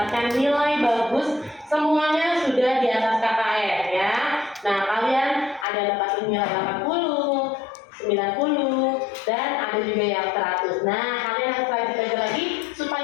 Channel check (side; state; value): right; drops out; at 5.7 s